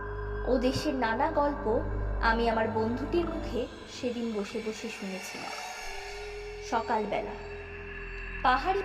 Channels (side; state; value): both; identical; correlation 1.00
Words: ও দেশের নানা গল্প আমি আমার বন্ধুটির মুখে সেদিন বসে বসে শুনেছিলাম। সকালবেলা পাহাড়ি